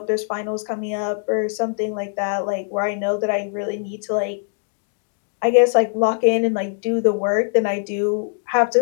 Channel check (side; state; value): right; silent; digital silence